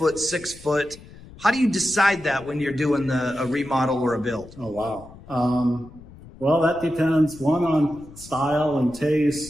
6 foot. How do you decide that when you're doing a remodel or a build? Oh, wow. Well, that depends, one, on style and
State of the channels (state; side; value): noise; left; rumble, 19 dB below the sound